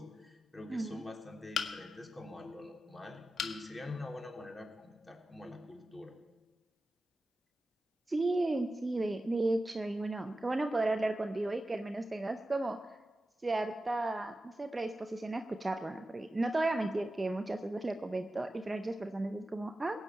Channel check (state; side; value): normal; both; correlation 0.93